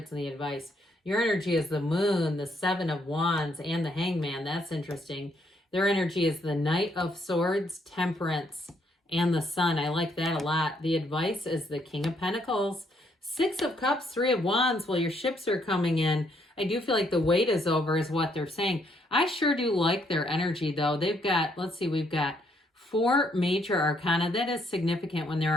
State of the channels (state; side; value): normal; both; correlation 0.71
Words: in the advice. Your energy is the Moon, the 7 of Wands, and the Hangman. That's interesting. Their energy is the Knight of Swords, Temperance, and the Sun. I like that a lot. The advice is the King of Pentacles, 6 of Cups, 3 of Wands. Well, your ships are coming in. I do feel like the wait is over is what they're saying. I sure do like their energy, though. They've got, let's see, we've got 4 major arcana. That is significant when there